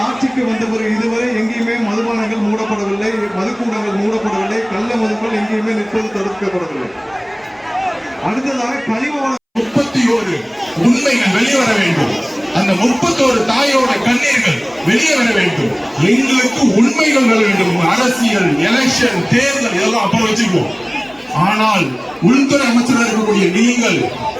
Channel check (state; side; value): identical; both; correlation 1.00